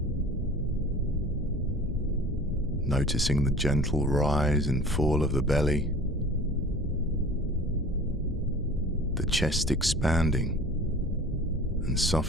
Noticing the gentle rise and fall of the belly, the chest expanding and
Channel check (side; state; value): both; normal; correlation 0.43